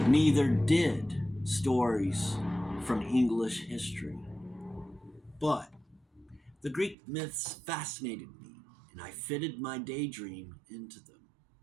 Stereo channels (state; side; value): drops out; left; at 7.0 s